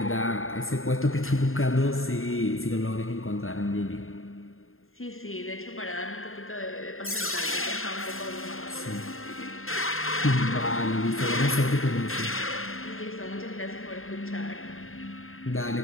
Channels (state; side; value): late; right; 0.61 ms